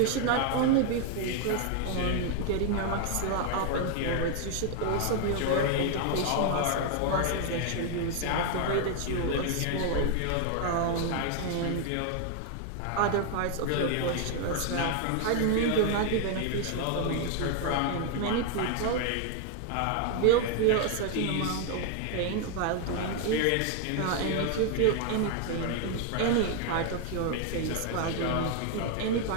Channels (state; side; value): different; both; correlation 0.00